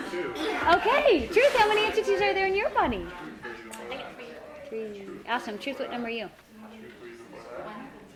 Okay, Truth, how many entities are there in your body? 3. Awesome. Truth, what number are you?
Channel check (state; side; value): identical; both; correlation 1.00